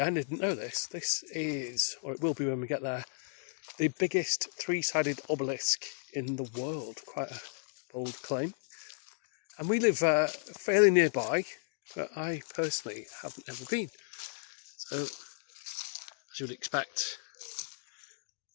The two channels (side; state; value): right; silent; digital silence